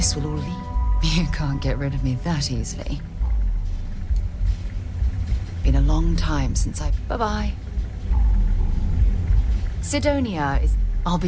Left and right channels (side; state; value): both; identical; correlation 1.00